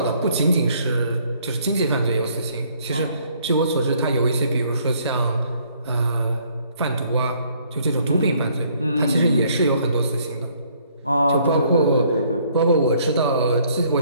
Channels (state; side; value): inverted; both; correlation -0.64